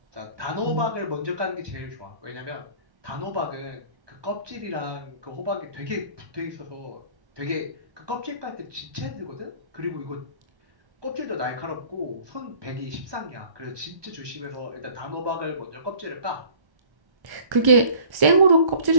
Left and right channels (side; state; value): left; late; 1.1 ms